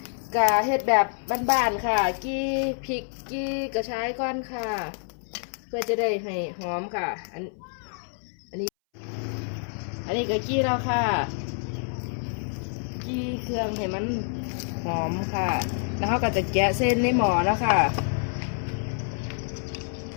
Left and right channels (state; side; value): silent; right; 60 dB below the other